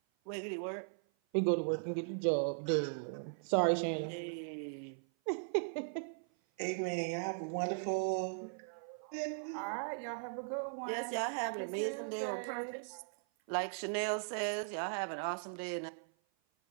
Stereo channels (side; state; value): left; silent; 52 dB below the other